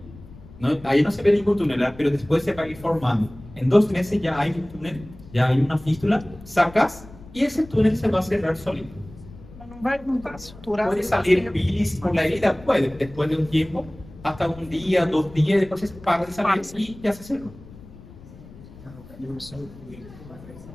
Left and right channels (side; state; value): left; noise; rumble, 19 dB below the sound